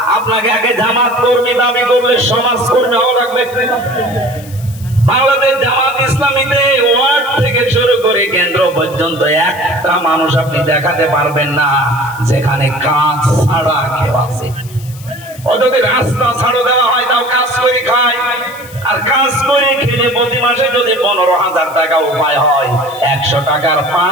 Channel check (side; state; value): left; noise; hiss, 20 dB below the sound